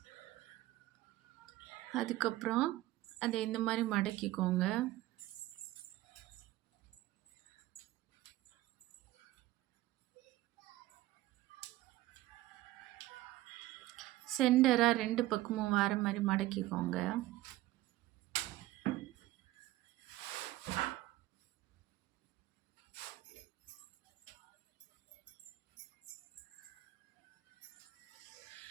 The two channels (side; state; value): left; quieter; 16.7 dB